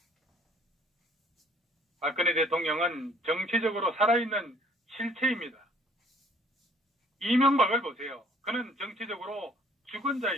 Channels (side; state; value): both; normal; correlation 0.57